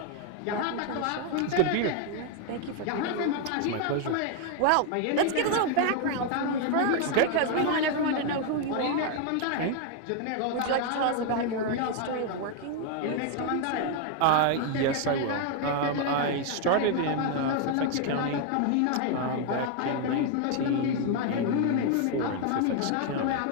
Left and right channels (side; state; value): both; different; correlation 0.00